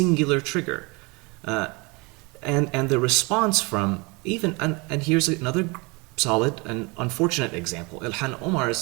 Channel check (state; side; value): quieter; left; 27.8 dB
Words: trigger? And the response from even, and here's another solid and unfortunate example. Ilhan